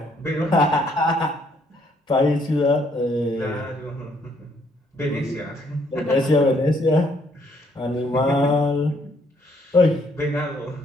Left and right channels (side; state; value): both; normal; correlation 0.68